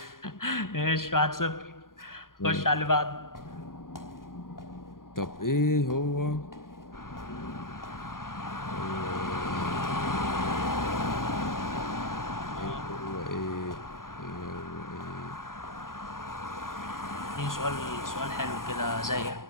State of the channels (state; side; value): late; right; 0.91 ms